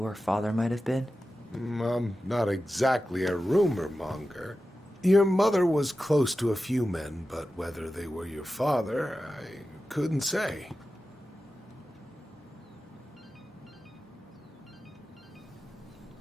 our father might have been? I'm not exactly a rumor monger. Your mother was close to a few men, but whether they were your father, I couldn't say.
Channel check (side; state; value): both; normal; correlation 0.93